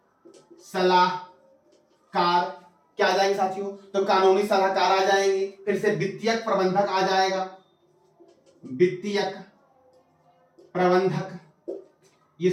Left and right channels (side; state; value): both; identical; correlation 1.00